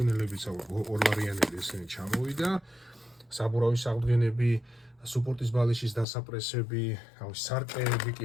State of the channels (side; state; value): right; drops out; at 6.1 s